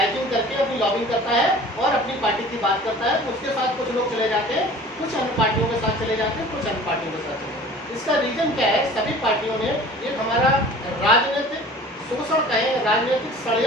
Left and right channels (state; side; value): normal; both; correlation 0.45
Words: करके अपनी लॉबिंग करता है और अपनी पार्टी की बात करता है। उसके साथ कुछ लोग चले जाते हैं, कुछ अन्य पार्टियों के साथ चले जाते हैं, कुछ अन्य पार्टियों के साथ चले जाते हैं। इसका रीजन क्या है? सभी पार्टियों ने एक हमारा राजनीतिक शोषण कहें, राजनीतिक